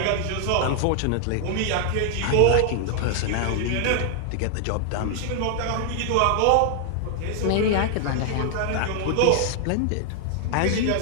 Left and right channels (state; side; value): different; both; correlation 0.00